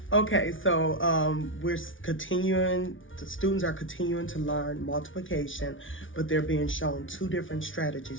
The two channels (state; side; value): late; right; 0.57 ms